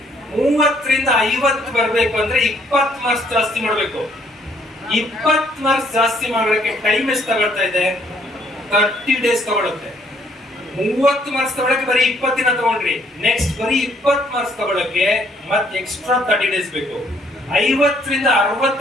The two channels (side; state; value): both; normal; correlation 0.66